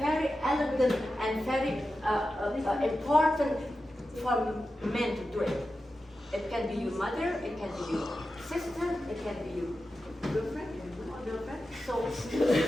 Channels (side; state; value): both; normal; correlation 0.91